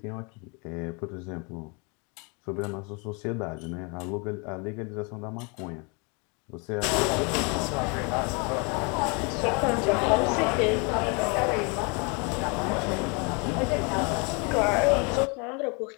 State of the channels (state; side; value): quieter; right; 32.7 dB